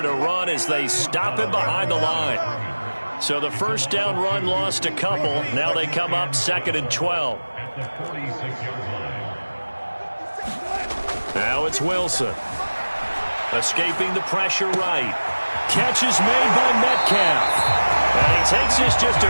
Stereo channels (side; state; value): both; inverted; correlation -1.00